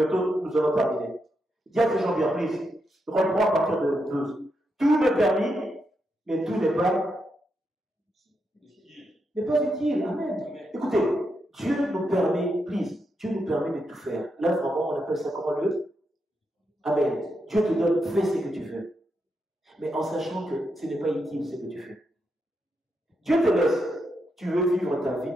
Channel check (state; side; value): normal; both; correlation 0.83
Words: nous allons terminer. Dis à tes gens bien, please. Reprends à partir de 12. Tout m'est permis, mais tout n'est pas utile. Amen. Écoutez, Dieu nous permet, please, Dieu nous permet de tout faire. Là, vraiment, on appelle ça comment le? Amen. Dieu te donne, fais ce que tu veux. Mais en sachant que ce n'est pas utile ce que tu fais. Dieu te laisse. Tu veux vivre ta vie